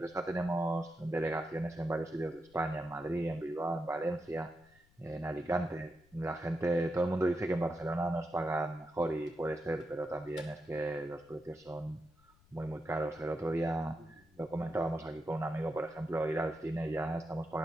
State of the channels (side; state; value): left; noise; rumble, 29 dB below the sound